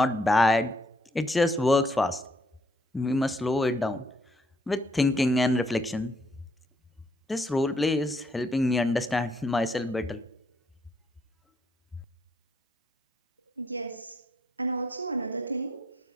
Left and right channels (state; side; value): normal; both; correlation 0.70